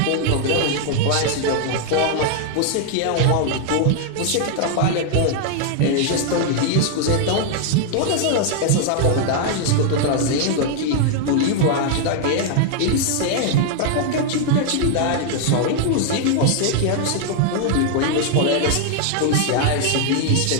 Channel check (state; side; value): different; both; correlation 0.00